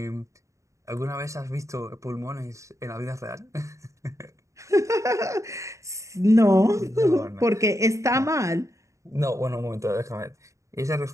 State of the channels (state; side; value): late; left; 0.15 ms